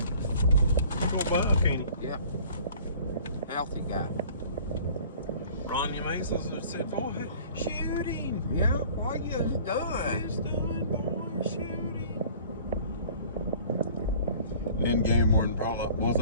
You're gonna buy, can't you? Yeah. Healthy guy. Ronnie Masons have said, boy, shoot him. Yeah, what you done? He's done, boy, shoot him. End game morning pull up. Was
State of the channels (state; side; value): inverted; both; correlation -0.49